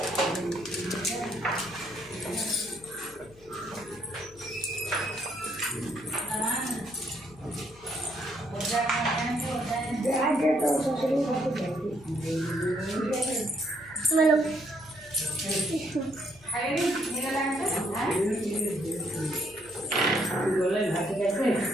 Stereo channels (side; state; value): left; noise; hum, 25 dB below the sound